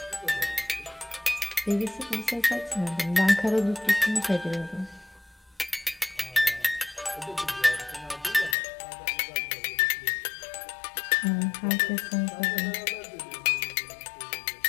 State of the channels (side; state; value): right; drops out; at 8.6 s